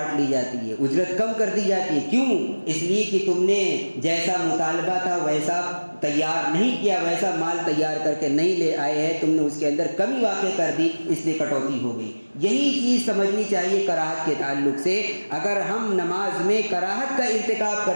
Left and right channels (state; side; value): inverted; both; correlation -1.00